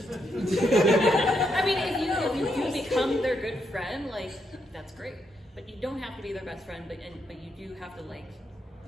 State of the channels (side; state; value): both; normal; correlation 0.79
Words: I mean, if you do become their good friend, like that's great. But you don't have to be their best friend. But you do have to like